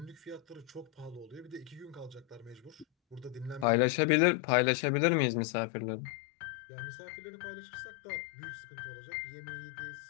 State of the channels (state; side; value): drops out; right; at 3.7 s